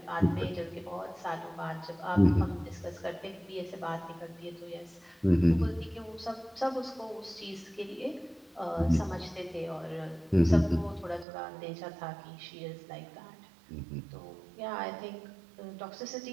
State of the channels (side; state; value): left; drops out; at 11.2 s